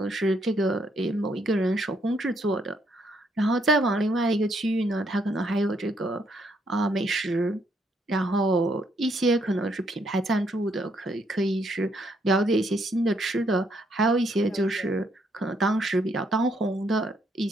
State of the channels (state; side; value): normal; both; correlation 0.72